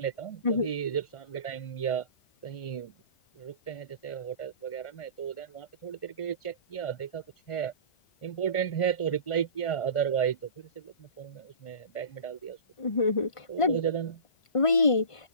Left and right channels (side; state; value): right; late; 1.5 ms